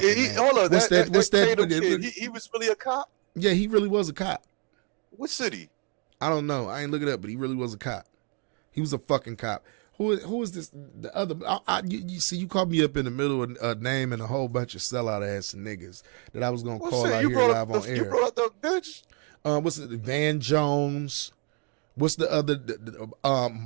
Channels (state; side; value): quieter; left; 36.1 dB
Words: Hold on, What's that Tatum kid, he was really a cop? Yeah, he really was a cop. What city? I don't know. I ain't look it up, but he really was a cop. He was a fucking cop. Who is this? The other? You see, you called me up in the middle of a name and a whole bunch of sellout ass niggas that I was gonna call out here live on air. You brought up the bitch. What's it? Van Jones. What's the other?